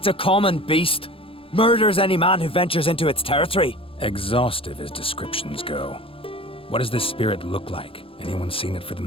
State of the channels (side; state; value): right; late; 0.27 ms